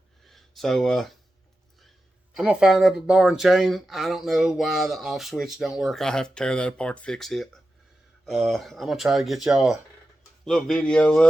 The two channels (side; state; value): both; normal; correlation 0.91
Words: So, I'm going to find up a bar and chain. I don't know why the off switch don't work. I have to tear that apart to fix it. I'm going to try to get y'all a little video